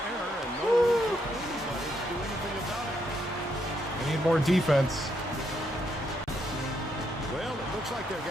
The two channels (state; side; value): normal; both; correlation 0.76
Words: and no room for anybody to do anything about it. We need more defense. Well, it looks like they're